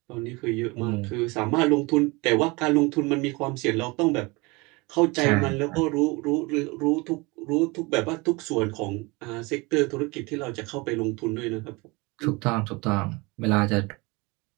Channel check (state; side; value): quieter; left; 25.5 dB